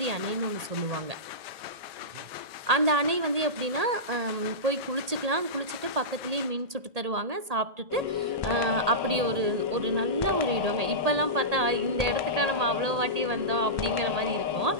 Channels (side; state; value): left; late; 1.8 ms